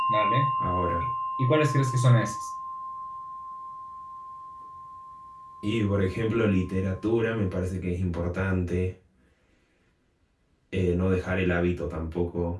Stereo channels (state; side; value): identical; both; correlation 1.00